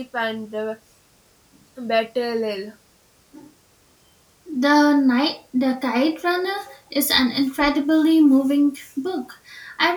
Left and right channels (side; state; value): both; identical; correlation 1.00